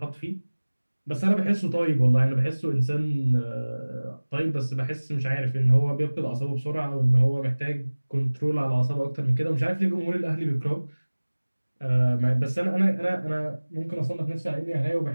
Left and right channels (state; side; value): inverted; both; correlation -1.00